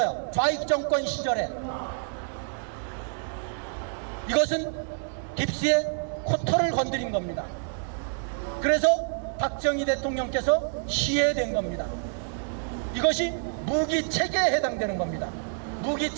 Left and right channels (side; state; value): left; silent; 60 dB below the other